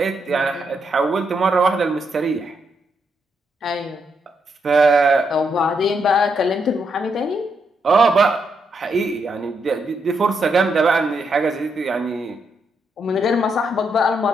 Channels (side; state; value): both; normal; correlation 0.79